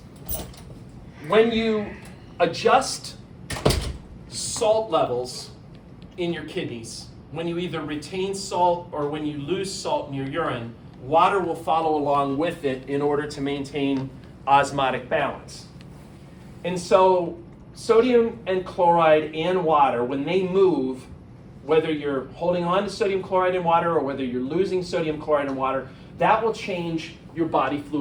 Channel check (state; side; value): identical; both; correlation 1.00